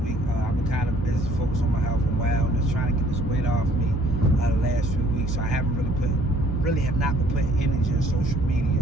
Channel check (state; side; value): normal; both; correlation 0.60